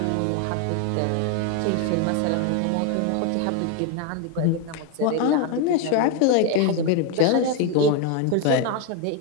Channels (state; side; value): different; both; correlation 0.01